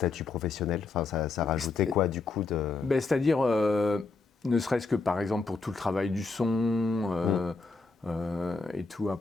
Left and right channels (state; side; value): quieter; right; 4.0 dB